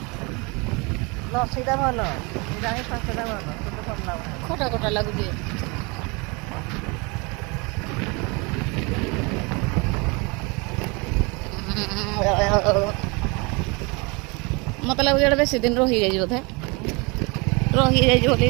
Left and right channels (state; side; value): quieter; left; 28.7 dB